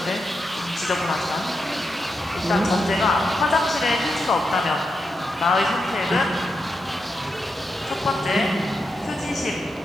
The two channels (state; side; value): normal; both; correlation 0.85